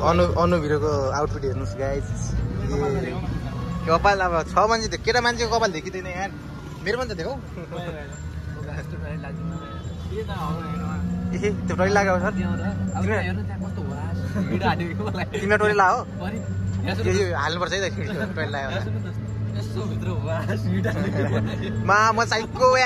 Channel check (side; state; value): both; identical; correlation 1.00